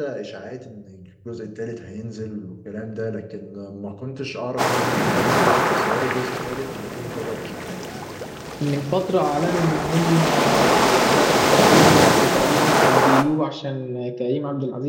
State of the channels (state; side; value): identical; both; correlation 1.00